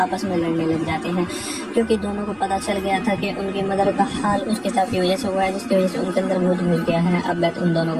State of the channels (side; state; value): both; identical; correlation 1.00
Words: में लड़ने लग जाते हैं, क्योंकि दोनों को पता चल गया था कि उनकी मदर का हाल उस किताब की वजह से हुआ है, जिसकी वजह से उनके अंदर भूत घुस गया है। अब बेथ उन दोनों